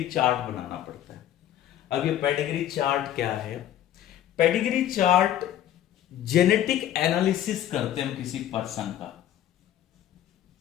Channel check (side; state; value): right; quieter; 11.6 dB